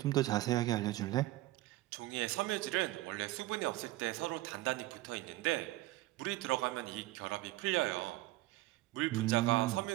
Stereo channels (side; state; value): left; quieter; 17.4 dB